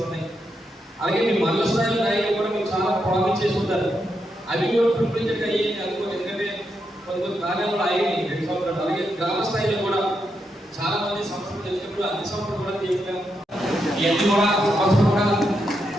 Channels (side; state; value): both; normal; correlation 0.83